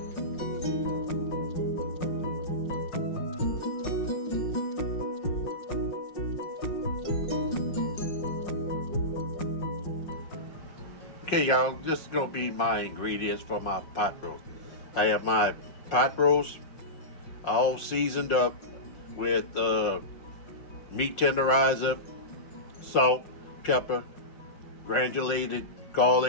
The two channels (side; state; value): right; late; 5.5 ms